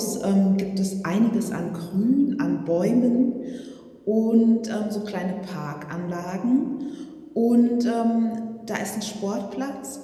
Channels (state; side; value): identical; both; correlation 1.00